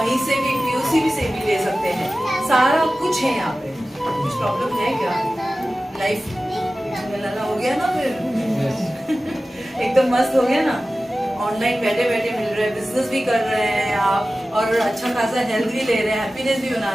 से भी पीओसी से भी ले सकते हैं, सारा कुछ है यहाँ पे। कुछ प्रॉब्लम है क्या? लाइफ मिलाना हो गया ना फिर एकदम मस्त हो गया ना, ऑनलाइन बैठे बैठे मिल रहे हैं, बिजनेस भी कर रहे हैं आप, और अच्छा खासा हेल्थ भी ले रहे हैं, हैप्पीनेस भी बना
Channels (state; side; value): normal; both; correlation 0.96